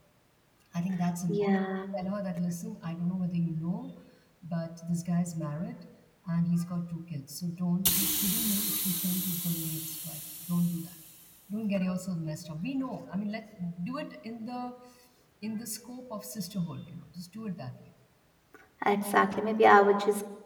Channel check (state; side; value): identical; both; correlation 1.00